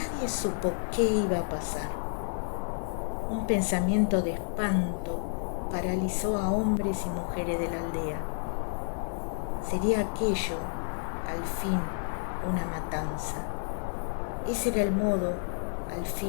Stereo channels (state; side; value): silent; right; digital silence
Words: supo qué iba a pasar. Un pensamiento de espanto paralizó a hombres y mujeres de la aldea. Sería aquello, al fin, una matanza. Ese era el modo, al